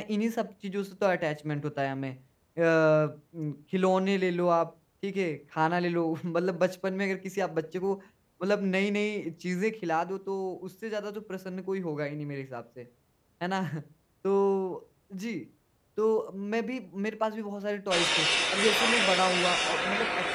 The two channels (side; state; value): both; identical; correlation 1.00